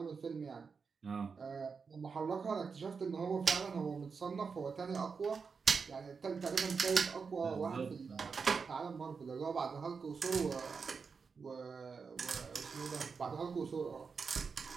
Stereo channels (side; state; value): left; quieter; 5.3 dB